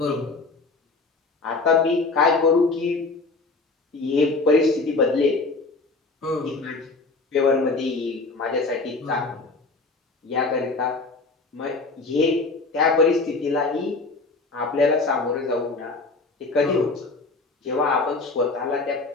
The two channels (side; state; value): right; quieter; 3.7 dB